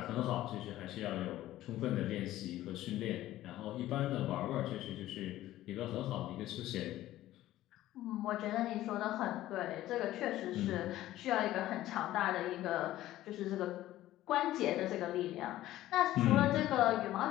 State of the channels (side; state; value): right; quieter; 14.7 dB